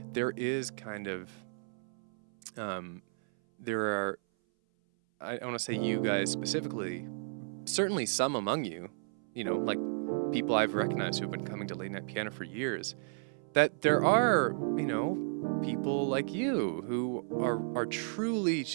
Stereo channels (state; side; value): silent; left; 56 dB below the other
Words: there is kind of, there are, I want to say you guys specifically, certainly some among you, you know, like people I've recognized who've been coming to Late Night Piano for years, that there are, you know, people like you who are truly